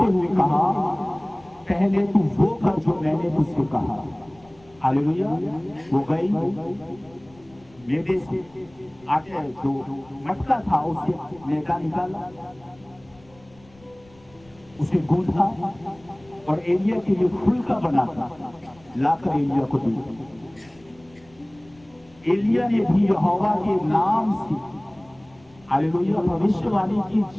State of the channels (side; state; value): left; noise; rumble, 28 dB below the sound